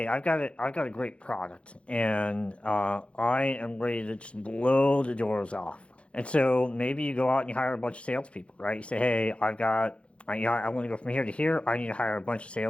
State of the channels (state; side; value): late; right; 0.060 ms